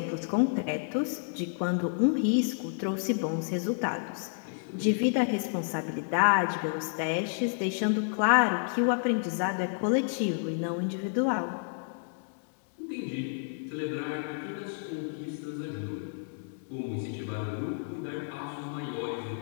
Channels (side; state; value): right; silent; digital silence